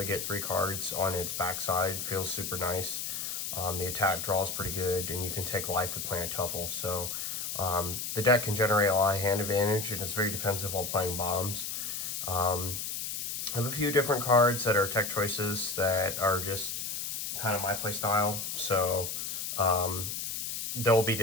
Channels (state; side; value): noise; left; hiss, 4 dB below the sound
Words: get 3 cards on its backside feels super nice. The attack draw is pretty good, and you can take life with Planet Tuffle. So the deck can generate a lot of hand advantage, and it's very defensive while playing bombs. I have a few different cards that are tech choices that are just kind of my play style. So they'll be